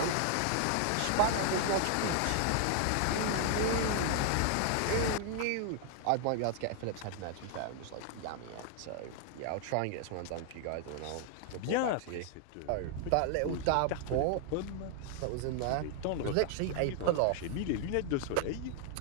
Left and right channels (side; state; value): both; different; correlation 0.00